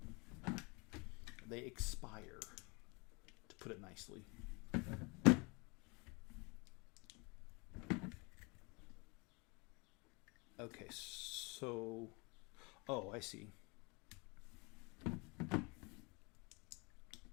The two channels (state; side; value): quieter; right; 29.1 dB